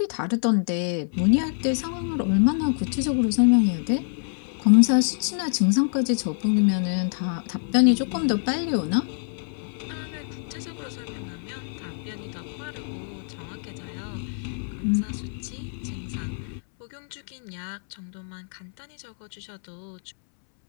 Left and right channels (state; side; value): silent; right; 61 dB below the other